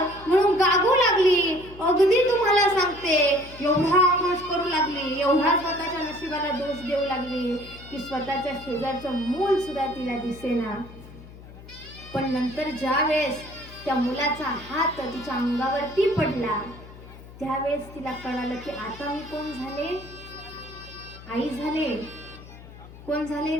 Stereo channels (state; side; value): noise; left; hum, 18 dB below the sound